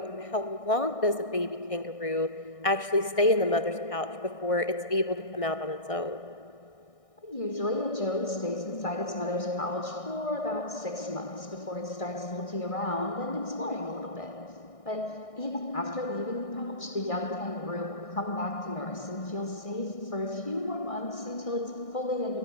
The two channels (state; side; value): late; right; 1.6 ms